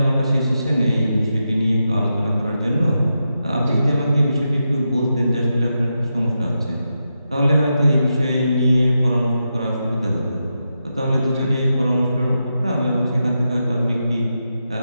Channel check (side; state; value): both; inverted; correlation -0.87